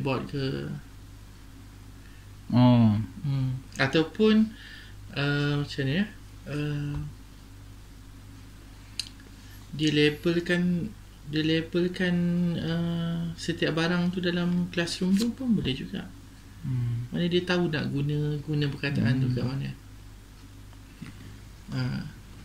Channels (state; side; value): identical; both; correlation 1.00